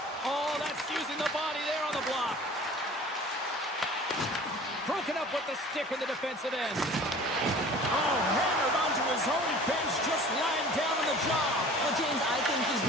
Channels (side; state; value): both; normal; correlation 0.45